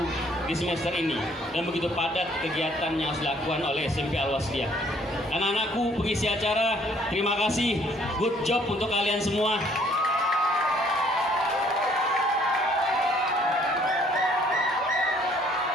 di semester ini, dan begitu padat kegiatan yang harus dilakukan oleh SMP Al-Wasliyah. Anak-anakku pengisi acara, terima kasih. Good job untuk kalian semua.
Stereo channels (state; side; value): normal; both; correlation 0.62